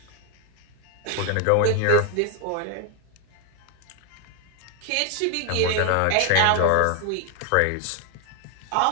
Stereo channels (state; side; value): different; both; correlation 0.00